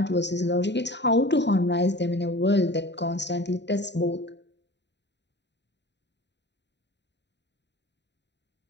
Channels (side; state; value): right; late; 0.51 ms